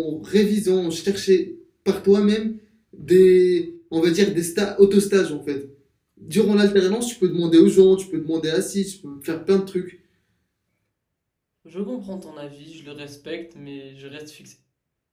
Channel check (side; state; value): both; identical; correlation 1.00